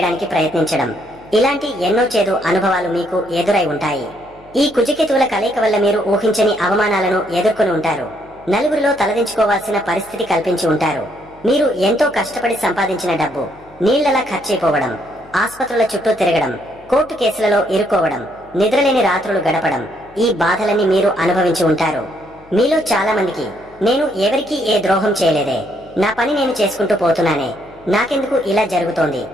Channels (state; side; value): noise; left; hum, 26 dB below the sound